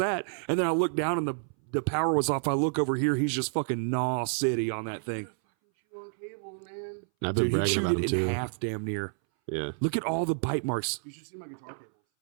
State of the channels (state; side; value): silent; left; 58 dB below the other